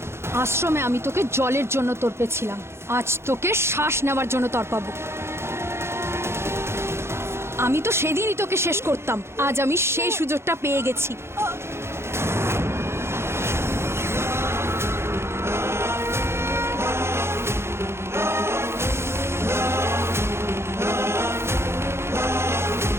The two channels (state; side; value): late; left; 0.12 ms